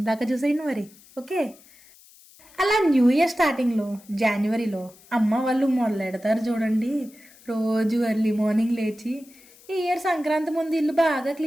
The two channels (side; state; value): left; noise; hiss, 25 dB below the sound